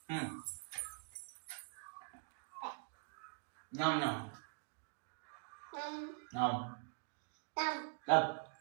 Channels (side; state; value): left; silent; digital silence